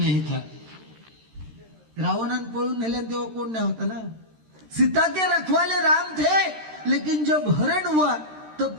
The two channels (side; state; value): left; late; 13 ms